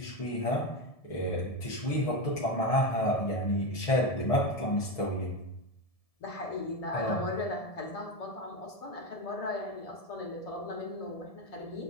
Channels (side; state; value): right; late; 1.7 ms